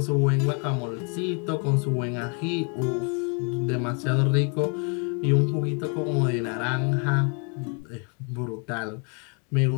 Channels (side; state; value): right; quieter; 37.3 dB